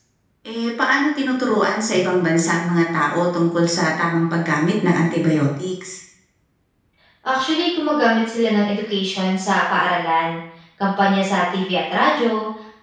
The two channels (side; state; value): both; identical; correlation 1.00